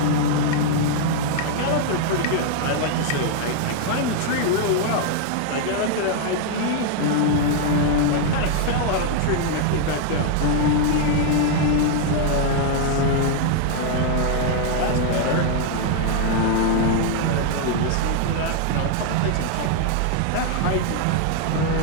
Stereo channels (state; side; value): different; both; correlation 0.00